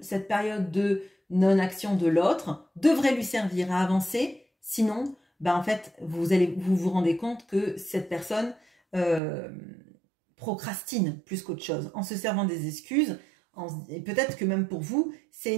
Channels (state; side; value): drops out; left; at 9.2 s